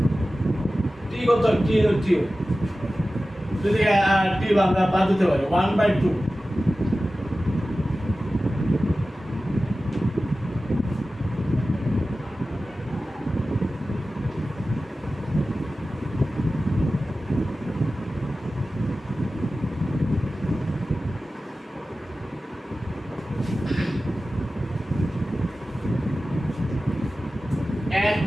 t কত? t যদি t আমরা বাদ দিতে পারি 1/2,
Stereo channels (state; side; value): normal; both; correlation 0.95